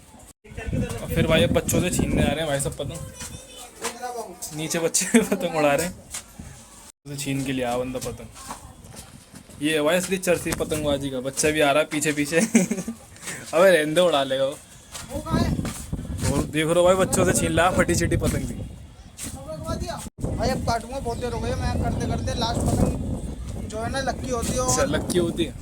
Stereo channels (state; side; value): identical; both; correlation 1.00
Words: फिर भाई अब बच्चों से छीनने आ रहे हैं भाई सब पतंग, नीचे बच्चे पतंग उड़ा रहे हैं, तो छीन के लिए आ बंदा पतंग। ये भाई असली चरसी पतंगबाजी का, बच्चा भी आ रहा है पीछे पीछे। अबे रहने दे, उड़ा लेगा वो। और देख रहे हो भाई, बच्चों से छीन ला फटी चिटी पतंग भी। भाई अब काटूंगा, बहुत देर हो गई मैं करते करते। लास्ट पतंग जो है ना लक्की होती है, अच्छा और लक्की होती है